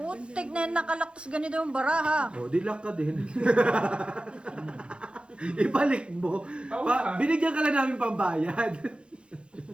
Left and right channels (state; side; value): late; left; 0.056 ms